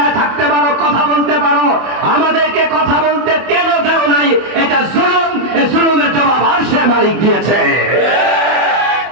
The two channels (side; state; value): left; late; 24 ms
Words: থাকতে পারো, কথা বলতে পারো, আমাদেরকে কথা বলতে কেন দেও নাই? এটা জুলুম। এই জুলুমের জবাব আরশের মালিক দিয়েছে।